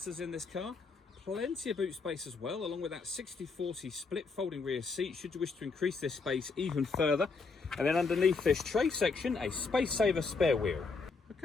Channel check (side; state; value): right; quieter; 4.5 dB